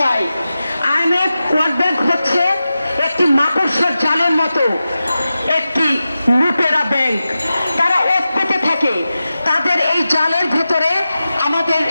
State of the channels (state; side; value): inverted; both; correlation -0.93